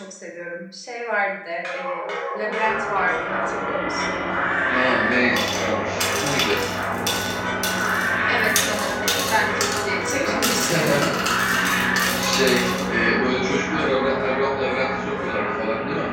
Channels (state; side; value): identical; both; correlation 1.00